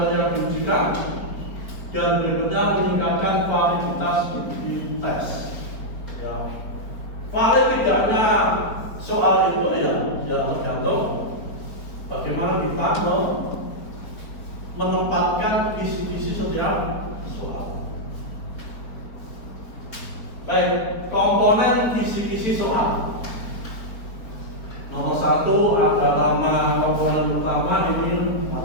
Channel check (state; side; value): late; right; 4.4 ms